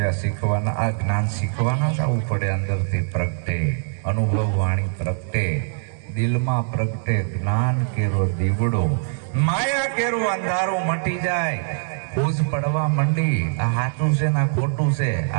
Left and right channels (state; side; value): silent; left; digital silence